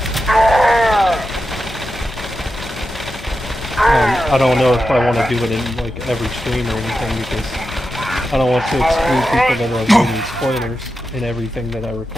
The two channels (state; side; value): normal; both; correlation 0.90